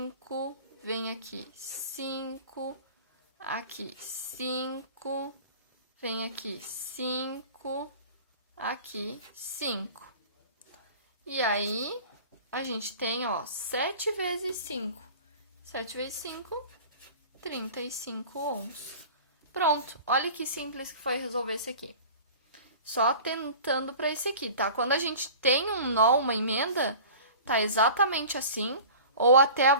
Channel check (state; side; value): inverted; both; correlation -0.40